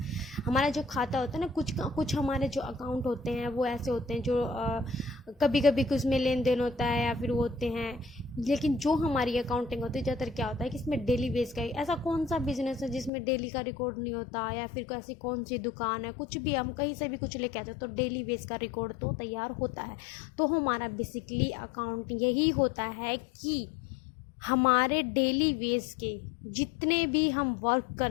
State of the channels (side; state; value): right; drops out; at 13.1 s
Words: हमारा जो खाता होता है ना, कुछ हमारे जो अकाउंट होते हैं वो ऐसे होते हैं जो कभी कभी कुछ में लेन देन होता है या फिर वो होते हैं, लेकिन जो हमारी अकाउंटिंग होती है ज़्यादातर क्या होता है कि इसमें डेली बेस का, ऐसा कौन सा बिजनेस है जिसमें डेली का रिकॉर्ड नहीं होता, या फिर ऐसी कौन सी दुकान है, कुछ भी हम कहीं से भी कुछ लेके आते हैं तो डेली बेस का रिकॉर्ड तो तैयार होता है। तो हमारा बेसिकली अकाउंट यही होता है कि हमारे डेली बेस के जितने भी हम वर्क कर